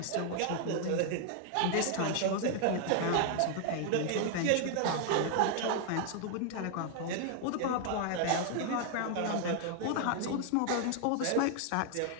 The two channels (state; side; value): different; both; correlation 0.00